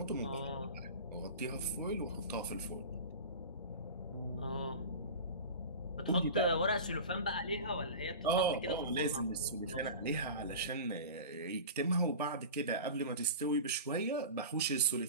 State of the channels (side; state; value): both; inverted; correlation -0.32